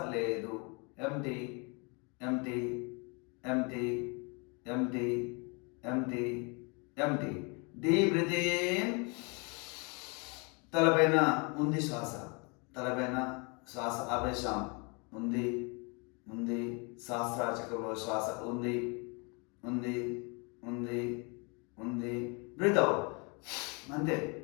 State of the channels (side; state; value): right; quieter; 32.1 dB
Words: లేదు. Empty, empty, empty, empty, empty, empty. Deep breath in. తలపైన ఉంది శ్వాస, తలపైన శ్వాస ఆపేశాం. ఉంది, ఉంది. సహస్రార చక్రంలో శ్వాస ఉంది, ఉంది, ఉంది, ఉంది. Breathe out. అంతే.